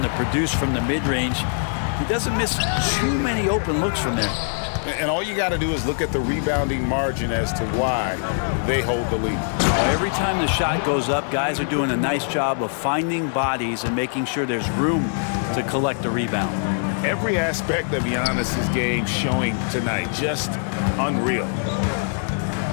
to produce from the mid-range. He doesn't miss too many open looks from there. And all you got to do is look at the rebounding margin as to why they hold the lead. Every time the shot goes up, guys are doing a nice job of finding bodies and making sure there's room to collect the rebound. Every aspect of Giannis's game showing tonight, just unreal.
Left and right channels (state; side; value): silent; right; digital silence